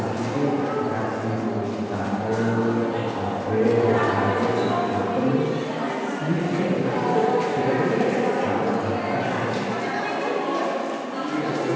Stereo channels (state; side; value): identical; both; correlation 1.00